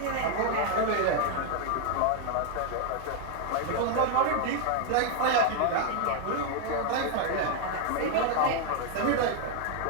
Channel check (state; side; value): different; both; correlation 0.00